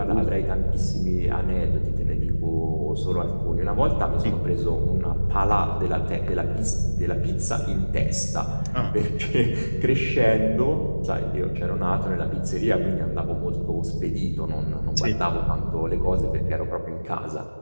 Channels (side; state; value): both; inverted; correlation -1.00